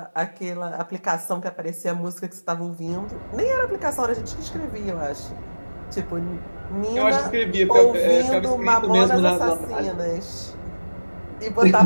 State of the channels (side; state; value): both; inverted; correlation -1.00